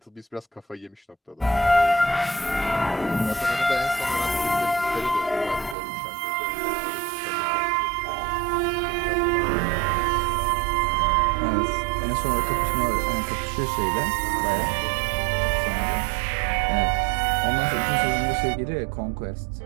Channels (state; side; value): drops out; left; at 5.8 s